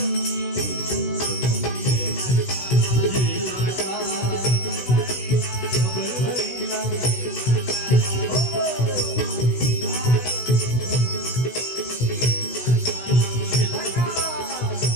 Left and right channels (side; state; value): right; late; 16 ms